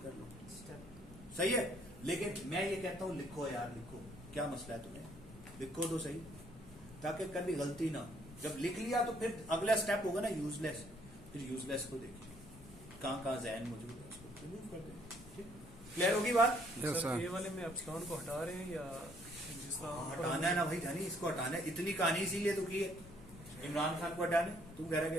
कर लो, स्टेप सही है। लेकिन मैं ये कहता हूँ लिखो यार, लिखो, क्या मसला है तुम्हें, लिखो तो सही, ताकि कभी गलती ना हो। जब लिख लिया तो फिर अगला स्टेप होगा ना यूजलेस, फिर यूजलेस को देखिए कहाँ जहन मौजूद है, उसको रिमूव कर दें। ठीक, क्लियर होगी बात? सर ये वाले में एप्सिलॉन को हटा रहे हैं या जिस तरह हटाना है ना भाई जानी, इसको हटाना है। इतनी कहानी इसीलिए तो की है इमरान खान को हटाने। तुम कह रहे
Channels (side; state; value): left; noise; rumble, 19 dB below the sound